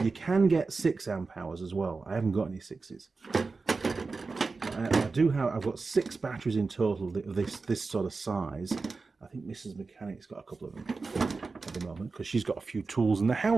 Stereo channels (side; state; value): left; quieter; 4.1 dB